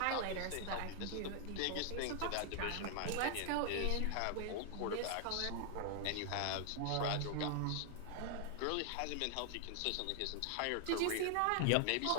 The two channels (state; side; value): different; both; correlation 0.00